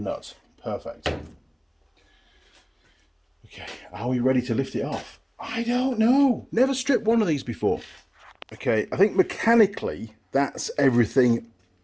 Perfect. Okay, are we ready to lift it off? I don't know. Never stripped one of these before. Okay, I think mechanically that's everything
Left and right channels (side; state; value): both; identical; correlation 1.00